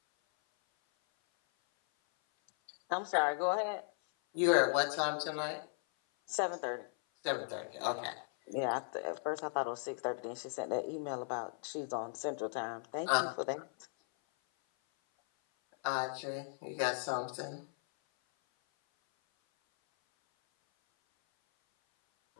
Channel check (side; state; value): right; silent; 53 dB below the other